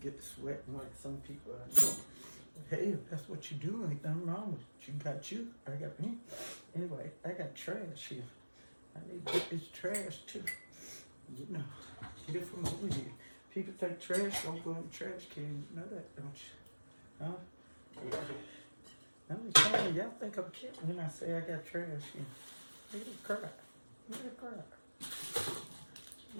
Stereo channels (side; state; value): both; inverted; correlation -1.00